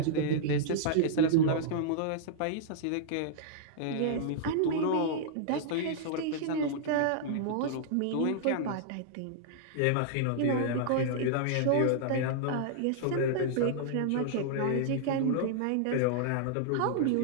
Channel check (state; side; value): different; both; correlation -0.01